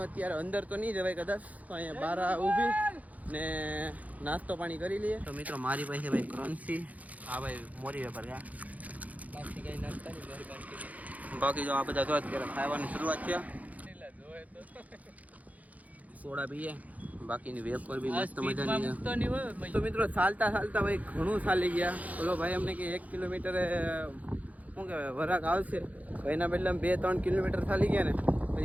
અત્યારે અંદર તો નહીં જવાય કદાચ, તો અહીંયા બહાર ઊભી ને નાસ્તો પાણી કરી લઈએ. તો મિત્રો મારી પાસે ભાઈ ક્રન્ચી, આ ભાઈ મોરી વેપાર ગયા, બાકી જો આ બધા તો અત્યારે ખાવાની શરૂઆત છે. સોડા પીએ, બાકીની વેફર બી મસ્ત મજાની. તો મિત્રો ચાલતા ભાઈ ઘણું ચાલી ગયા. બોલો ભાઈ અમને કે 1 કિલોમીટર શું કહેવાય વરાક આવશે, એના બદલે 2-3 કિલોમીટર ચાલી ગયા ને.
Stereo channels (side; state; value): left; late; 0.074 ms